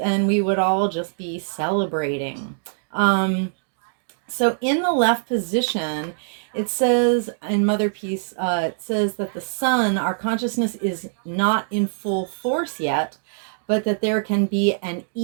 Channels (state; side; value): silent; left; digital silence